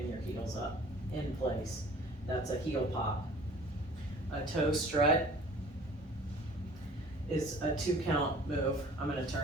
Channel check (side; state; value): both; normal; correlation 0.49